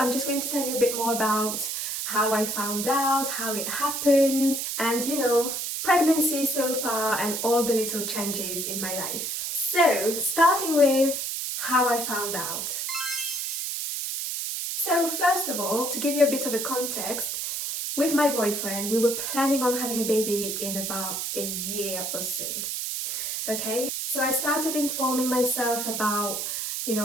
just going to tell you a bit more about how I found out, how it happened, and pregnancy so far and all the little changes in my life. So, starting with how I found out. So first of all, to give you a bit of a context, with my boyfriend, we were planning on having a baby in about a year or so. Okay, so I started informing myself about,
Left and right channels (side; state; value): right; noise; hiss, 3 dB below the sound